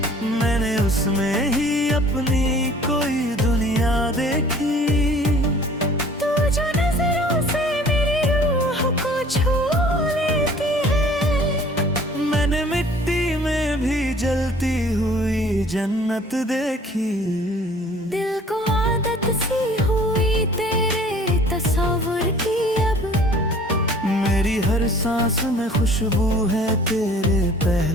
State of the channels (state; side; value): normal; both; correlation 0.51